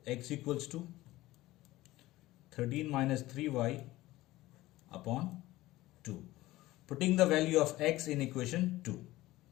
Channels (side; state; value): right; quieter; 17.5 dB